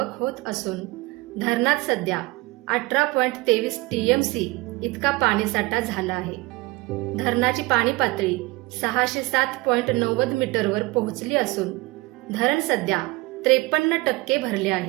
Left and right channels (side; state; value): left; quieter; 22.4 dB